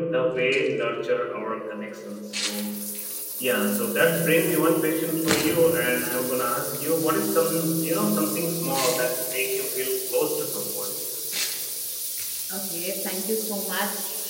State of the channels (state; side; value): identical; both; correlation 1.00